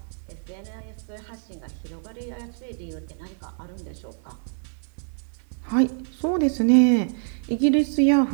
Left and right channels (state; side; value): silent; left; 61 dB below the other